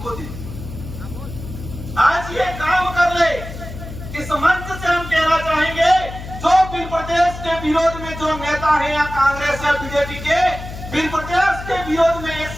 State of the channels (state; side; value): noise; left; hum, 11 dB below the sound